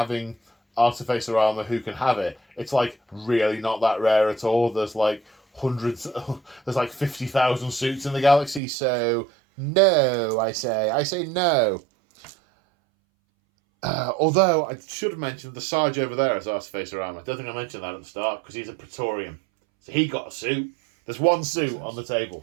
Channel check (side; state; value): left; drops out; at 8.6 s